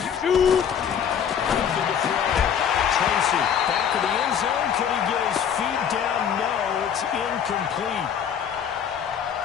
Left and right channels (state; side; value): quieter; right; 8.2 dB